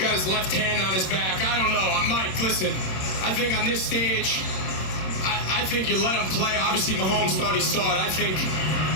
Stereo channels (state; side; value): late; right; 27 ms